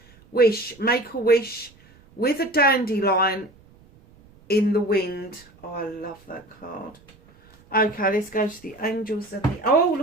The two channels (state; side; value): noise; right; rumble, 28 dB below the sound